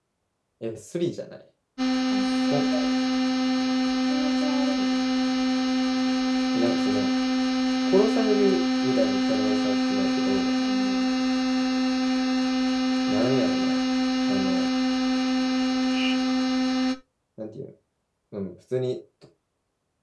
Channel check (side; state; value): both; identical; correlation 1.00